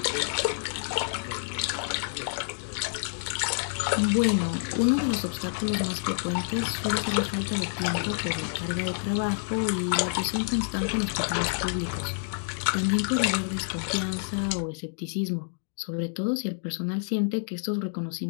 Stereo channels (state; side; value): silent; right; digital silence